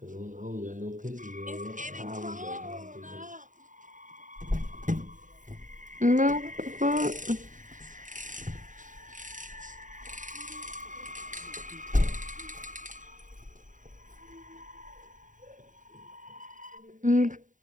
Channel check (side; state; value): left; late; 0.37 ms